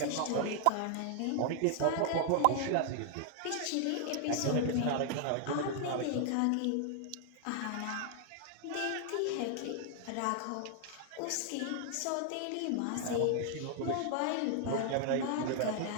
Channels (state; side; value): different; both; correlation 0.00